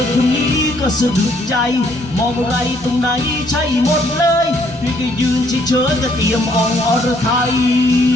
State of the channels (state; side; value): normal; both; correlation 0.67